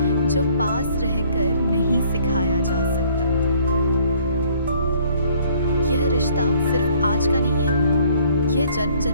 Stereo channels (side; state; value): both; inverted; correlation -0.59